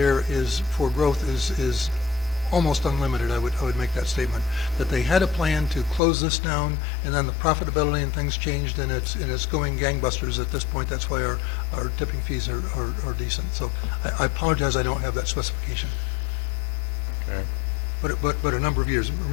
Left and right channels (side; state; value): right; drops out; at 6.0 s